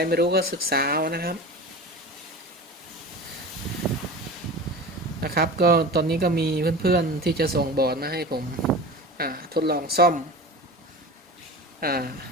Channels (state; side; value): normal; both; correlation 0.33